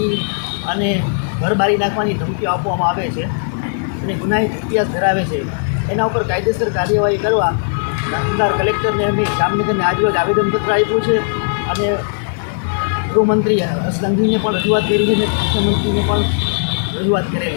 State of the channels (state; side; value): silent; right; digital silence